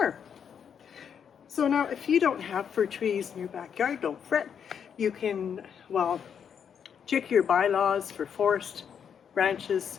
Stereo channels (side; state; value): right; quieter; 7.7 dB